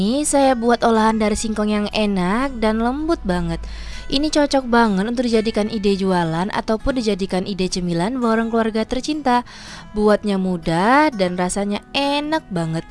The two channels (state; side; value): identical; both; correlation 1.00